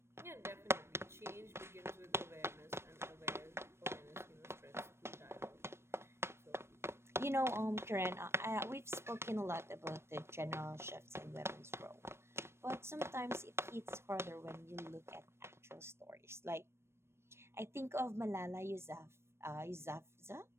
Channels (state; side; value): late; left; 0.12 ms